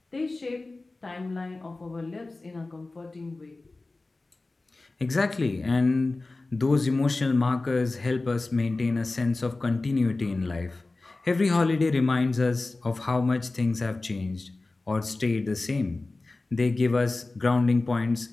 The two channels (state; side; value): quieter; right; 3.3 dB